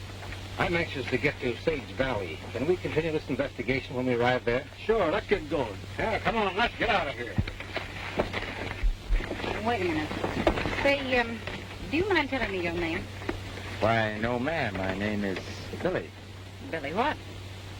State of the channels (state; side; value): identical; both; correlation 1.00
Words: I'm anxious to get to Sage Valley. Can we continue this investigation when we arrive there? Sure, let's get going. Yeah, come on, let's get out of here. Wait a minute. Say, do you mind telling me your name? Why, no, ma'am. My name is Billy. Billy what?